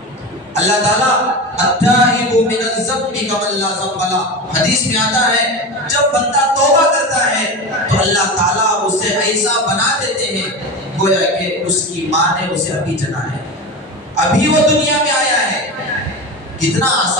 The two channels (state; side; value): normal; both; correlation 0.25